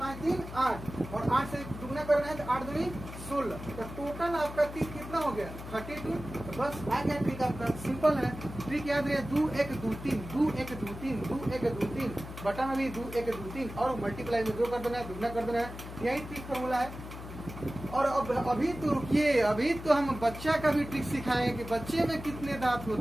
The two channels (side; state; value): left; noise; hum, 11 dB below the sound